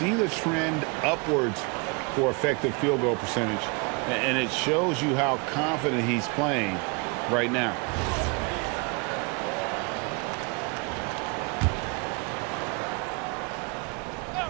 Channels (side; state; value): left; quieter; 31.1 dB